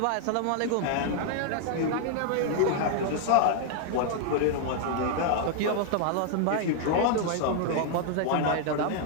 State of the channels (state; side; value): different; both; correlation 0.00